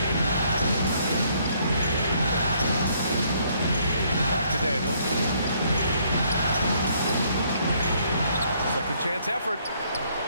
Back to Daniels. Second chance effort.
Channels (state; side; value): inverted; both; correlation -0.67